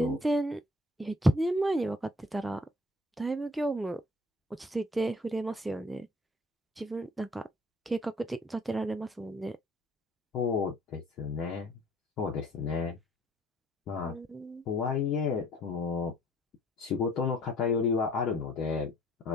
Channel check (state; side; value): normal; both; correlation 0.58